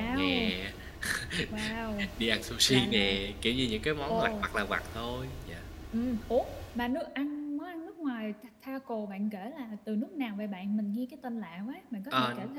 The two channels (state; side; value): identical; both; correlation 1.00